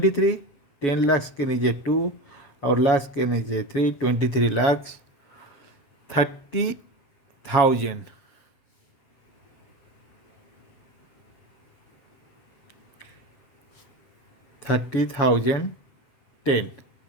10 लाख के नीचे 2 और लाख के नीचे 3, 23 लाख 30,000, 30,000, 10,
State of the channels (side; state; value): right; late; 7.2 ms